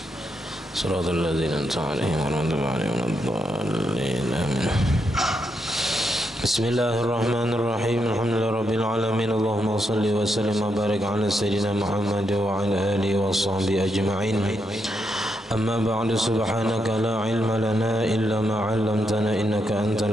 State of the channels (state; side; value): normal; both; correlation 0.81